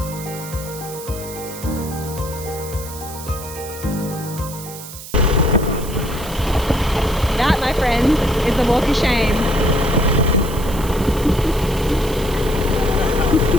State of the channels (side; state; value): right; noise; hiss, 13 dB below the sound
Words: That, my friends, is the walk of shame.